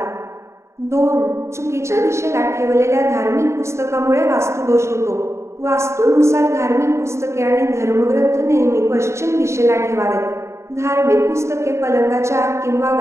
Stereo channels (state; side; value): late; left; 0.14 ms